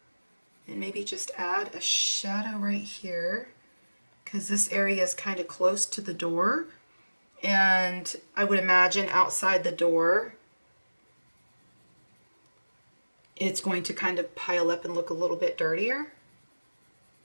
And maybe just add a shadow right here, because this area is kind of close to the door. And I would imagine outside the door, it's going to kind of pile up and look a little bit dirtier.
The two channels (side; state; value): both; inverted; correlation -1.00